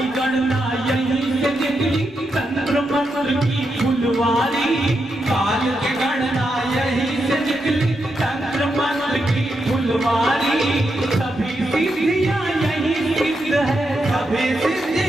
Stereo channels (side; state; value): both; normal; correlation 0.84